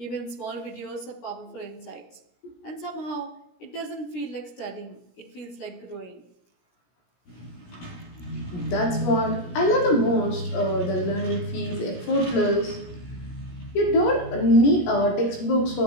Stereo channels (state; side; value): late; right; 17 ms